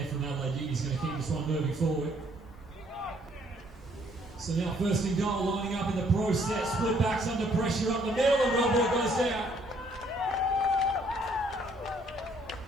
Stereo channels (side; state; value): both; normal; correlation 0.65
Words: from Adelaide. He's going to keep this one moving forward. So now first and goal, lining up in the process. Split backs under pressure up the middle and Wellborn goes down.